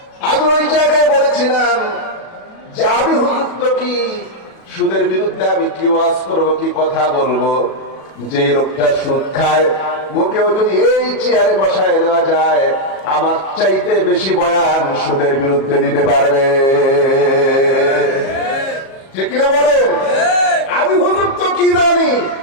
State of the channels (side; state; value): right; late; 37 ms